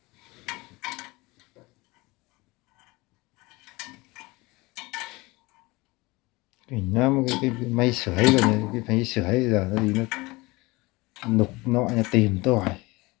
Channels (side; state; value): right; quieter; 22.9 dB